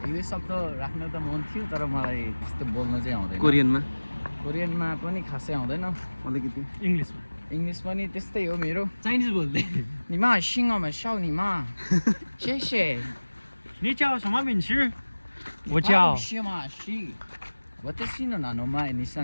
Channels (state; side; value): inverted; both; correlation -1.00